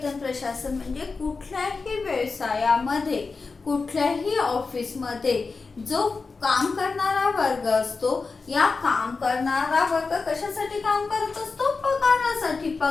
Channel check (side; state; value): right; quieter; 4.3 dB